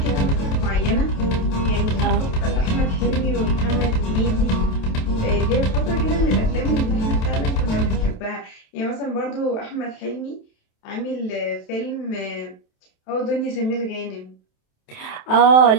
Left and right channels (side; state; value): right; late; 27 ms